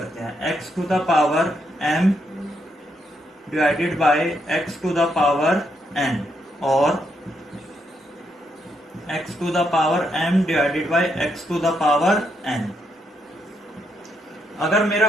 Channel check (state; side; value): normal; both; correlation 0.78